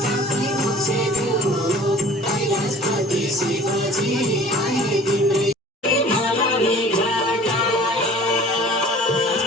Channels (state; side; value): normal; both; correlation 0.47